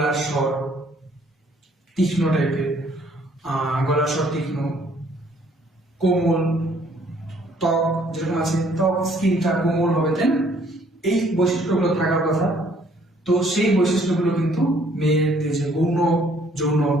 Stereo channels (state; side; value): normal; both; correlation 0.62